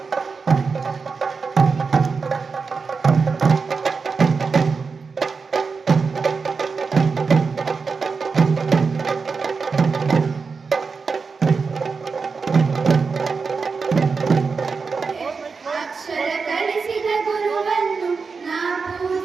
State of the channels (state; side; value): quieter; left; 4.9 dB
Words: ಅಕ್ಷರ ಕಲಿಸಿದ ಗುರುವನ್ನು ನಾ